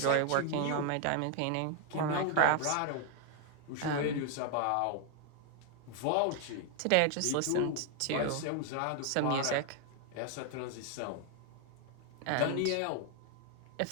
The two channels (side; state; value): both; different; correlation 0.00